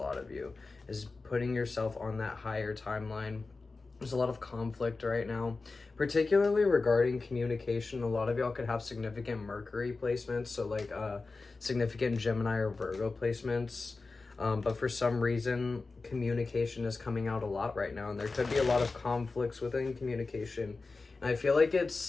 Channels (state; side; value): quieter; right; 3.8 dB